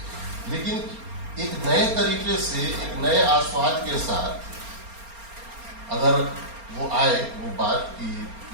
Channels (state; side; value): late; left; 4.3 ms